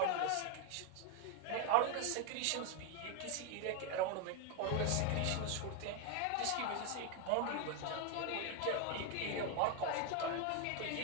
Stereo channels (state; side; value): different; both; correlation 0.01